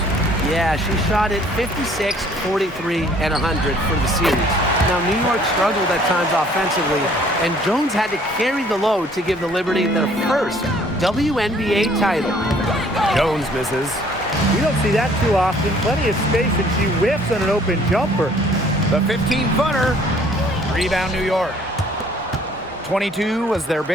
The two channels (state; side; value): normal; both; correlation 0.58